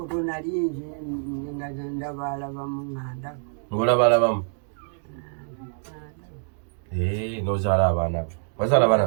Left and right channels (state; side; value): silent; left; digital silence